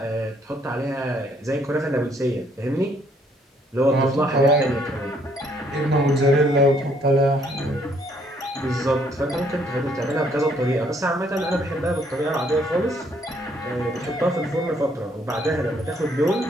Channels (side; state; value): both; normal; correlation 0.67